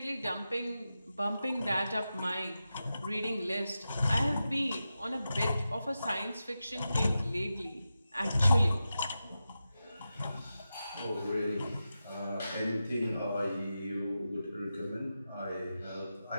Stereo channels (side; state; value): both; inverted; correlation -0.91